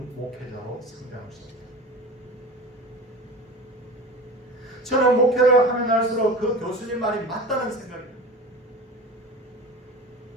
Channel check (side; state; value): both; normal; correlation 0.33